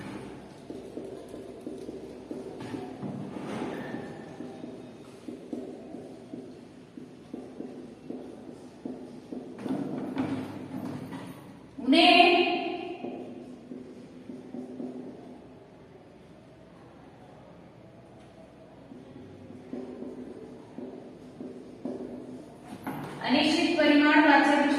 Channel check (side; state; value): both; identical; correlation 1.00